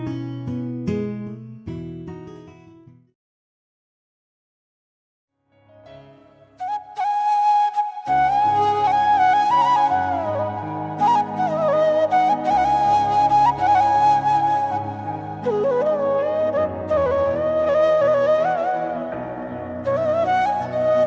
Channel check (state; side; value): identical; both; correlation 1.00